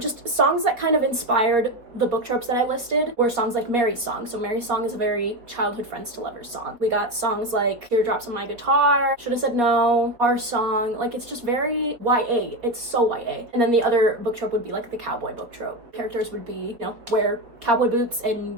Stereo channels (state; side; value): late; left; 4.2 ms